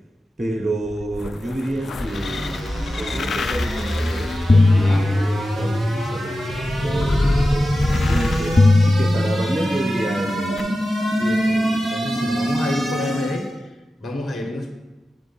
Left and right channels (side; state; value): both; normal; correlation 0.93